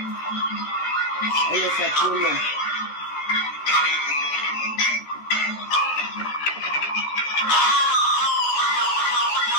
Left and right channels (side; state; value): right; late; 13 ms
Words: Et le fait trop long.